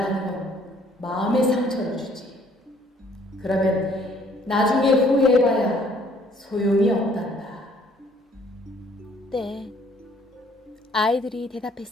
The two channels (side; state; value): both; normal; correlation 0.61